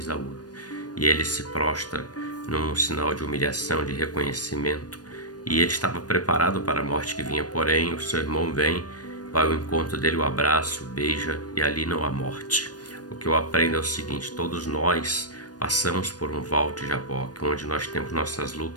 E ele se prostra num sinal de humilhação, de reconhecimento. E ele estava preparado para a morte que vinha, porém o seu irmão vem, vai ao encontro dele, o abraça, o beija, e ali não há morte. O que eu aprendo é o seguinte: todos nós passamos por um val de Jaboque, onde nós temos nossas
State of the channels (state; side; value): late; right; 0.69 ms